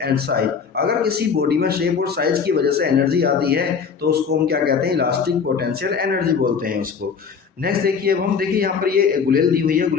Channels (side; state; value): right; quieter; 6.1 dB